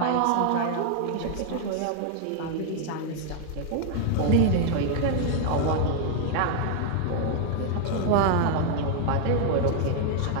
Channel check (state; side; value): different; both; correlation 0.00